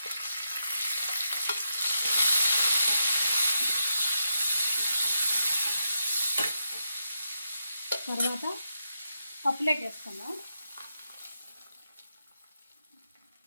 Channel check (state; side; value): inverted; both; correlation -0.82